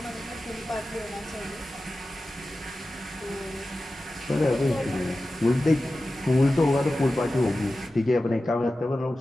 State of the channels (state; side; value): normal; both; correlation 0.94